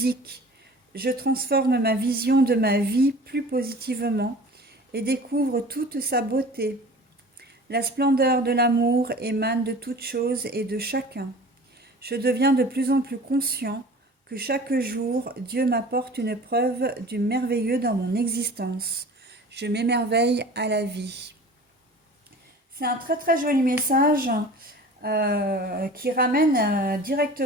Je transforme ma vision de ma vie plus positivement et découvre toute sa beauté. La splendeur de l'amour émane de toutes choses et de chacun. Je deviens de plus en plus conscient que chaque jour, Dieu m'apporte une preuve du merveilleux dans mon existence. Je m'émerveille à la vie. C'est un très très joli message qui ramène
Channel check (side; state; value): both; normal; correlation 0.42